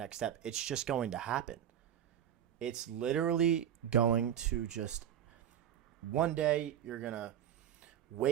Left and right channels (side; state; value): left; quieter; 10.1 dB